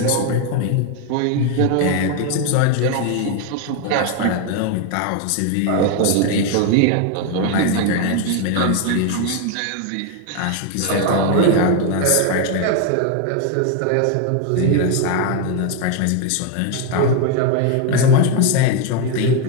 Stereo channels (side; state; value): both; different; correlation 0.01